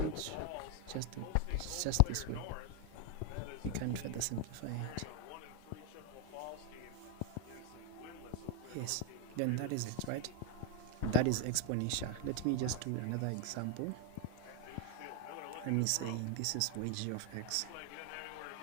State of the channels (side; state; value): both; different; correlation 0.01